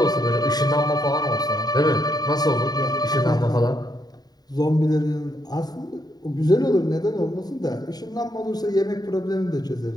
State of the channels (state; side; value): late; right; 0.19 ms